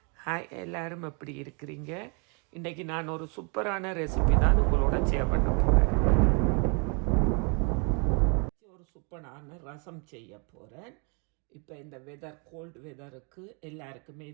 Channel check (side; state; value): left; quieter; 35.7 dB